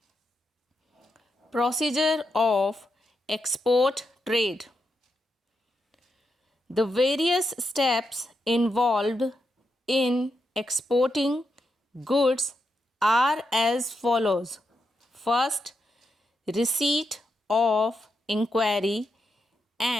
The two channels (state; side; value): normal; both; correlation 0.84